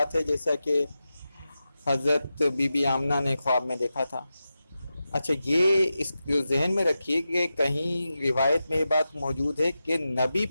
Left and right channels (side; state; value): both; inverted; correlation -0.91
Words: ہے جیسا کہ حضرت بی بی آمنہ نے خواب میں دیکھا تھا۔ اچھا، یہ اس کو ذہن میں رکھیے کہ کہیں روایت میں یہ بات موجود ہے کہ نبی